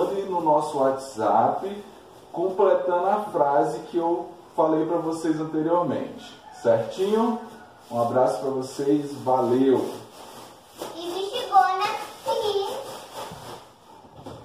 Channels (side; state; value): both; identical; correlation 1.00